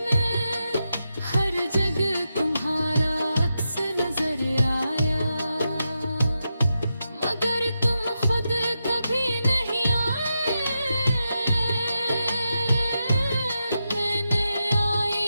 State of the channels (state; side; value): inverted; both; correlation -0.87